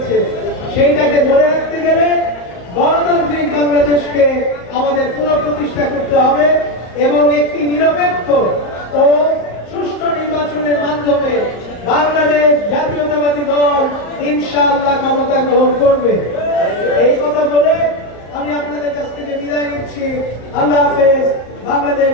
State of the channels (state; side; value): late; right; 34 ms